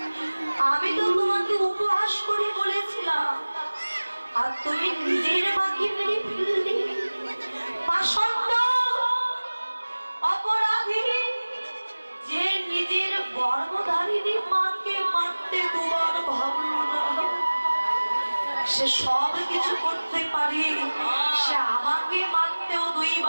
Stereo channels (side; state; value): both; inverted; correlation -1.00